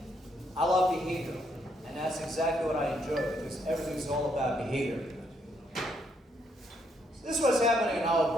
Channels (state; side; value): normal; both; correlation 0.74